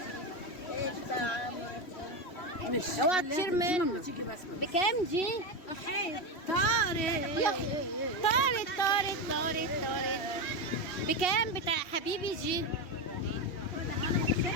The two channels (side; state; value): right; late; 2.7 ms